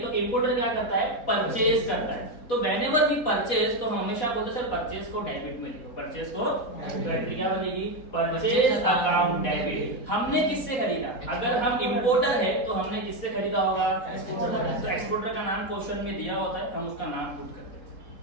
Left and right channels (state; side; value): late; right; 4.1 ms